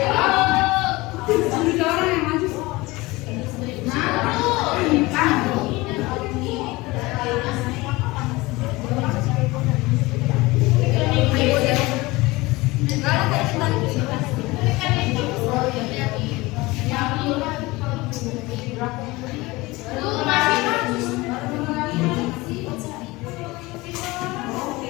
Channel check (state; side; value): quieter; right; 21.6 dB